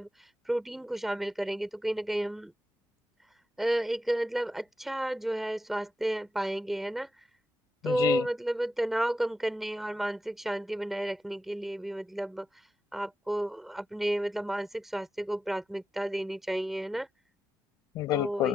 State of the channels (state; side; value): normal; both; correlation 0.88